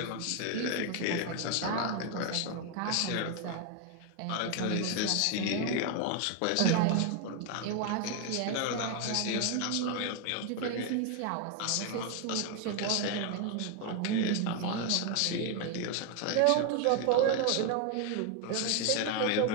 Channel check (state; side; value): different; both; correlation 0.01